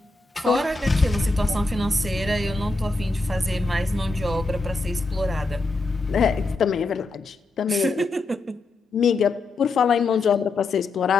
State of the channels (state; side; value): quieter; right; 3.5 dB